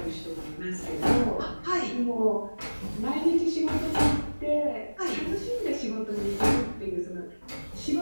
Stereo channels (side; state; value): both; inverted; correlation -1.00